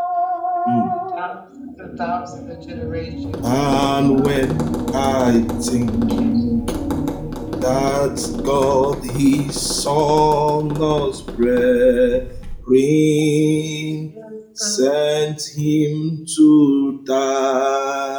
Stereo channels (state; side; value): identical; both; correlation 1.00